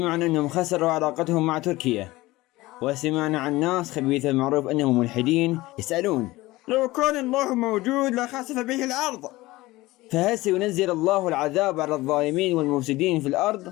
أنهم خسروا علاقتهم مع تركيا، وسمعنا عن ناس خبيثة المعروف أنهم ملحدين يسألون لو كان الله موجود لخسف به الأرض. فهل سينزل الله العذاب على الظالمين والمفسدين في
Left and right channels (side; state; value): right; quieter; 19.1 dB